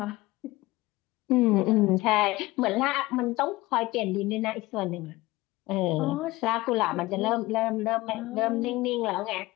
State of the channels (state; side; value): quieter; right; 19.7 dB